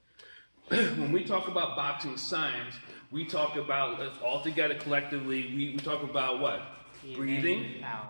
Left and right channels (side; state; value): both; inverted; correlation -1.00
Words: When we talk about boxing science, we talk about, all together collectively, we talk about what? Breathing,